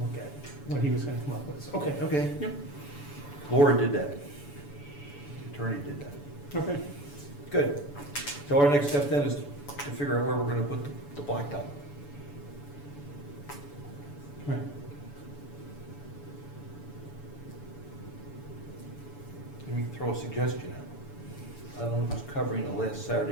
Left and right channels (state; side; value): late; right; 7.0 ms